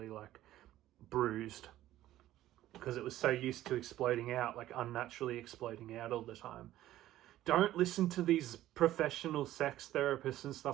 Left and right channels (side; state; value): left; quieter; 14.1 dB